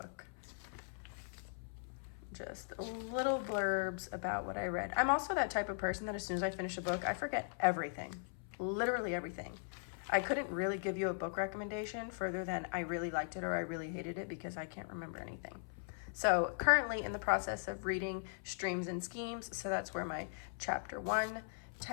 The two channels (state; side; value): silent; right; 52 dB below the other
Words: Just little blurbs about what I read. I'm also that type of person that as soon as I finish a book, I forget everything, literally everything. I couldn't really give you a book recommendation further than I really liked it or I really hated it because I can't remember anything. So currently in the process of reading Streams and Schemes, so that's where my chapter 1